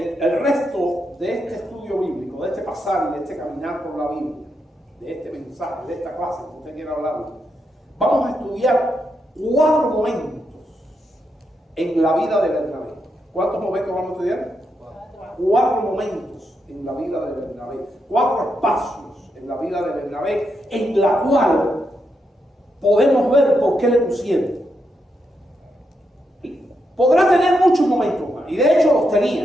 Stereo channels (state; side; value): normal; both; correlation 0.83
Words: resto de este estudio bíblico, de este pasar y de este caminar por la Biblia, de este mensaje, de esta clase que usted quiera hablar, vamos a estudiar 4 momentos en la vida de Bernabé. ¿Cuántos momentos vamos a estudiar? 4 momentos en la vida de Bernabé. 4 espacios en la vida de Bernabé, en la cual podemos ver por qué le pusieron. Podrá tener muchos momentos más, y de hecho los